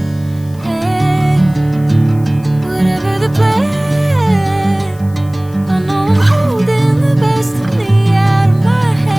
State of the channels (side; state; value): left; noise; hiss, 26 dB below the sound